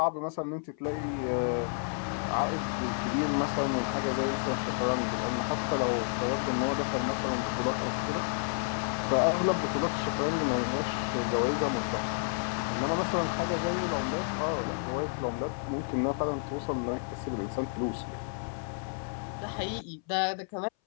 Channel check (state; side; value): silent; right; 57 dB below the other